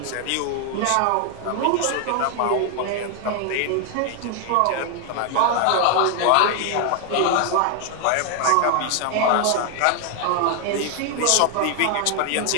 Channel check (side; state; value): both; different; correlation 0.01